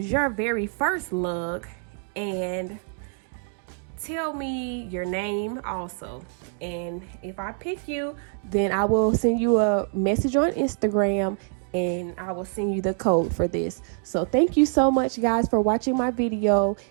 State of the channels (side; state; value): left; silent; 56 dB below the other